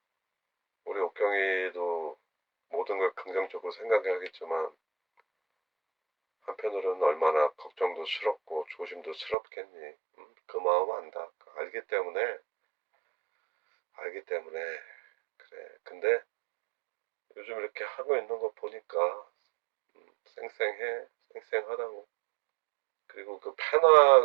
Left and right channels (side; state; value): left; drops out; at 9.3 s